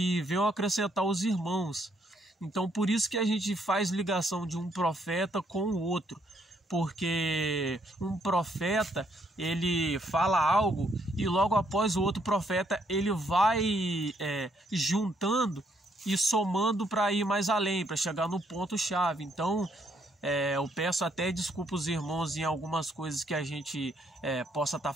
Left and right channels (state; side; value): normal; both; correlation 0.71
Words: venham acrescentar os irmãos. Então por isso que a gente faz ligação de um profeta com o outro, porque um profeta ele fala algo e logo após o outro profeta ele vai juntando e somando para ir mais além, para chegar no ponto chave. Então eu peço até desculpa os irmãos em algumas coisas que a gente possa estar